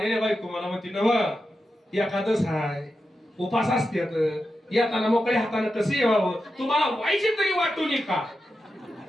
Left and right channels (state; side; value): normal; both; correlation 0.89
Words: बायको मला म्हणते नव एकादश हाय, उपास असतात, येताना मोकळ्या हाताने कसं यावं, तुम्हाला व्हायचे तरी वाटून का?